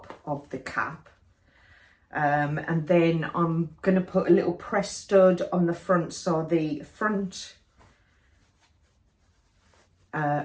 of the cap, and then I'm going to put a little press stud on the front, so the front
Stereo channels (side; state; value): both; identical; correlation 1.00